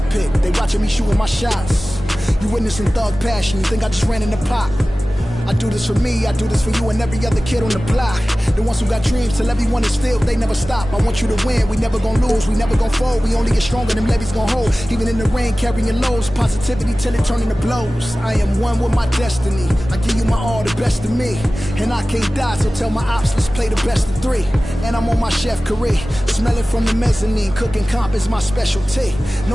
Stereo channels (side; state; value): both; normal; correlation 0.97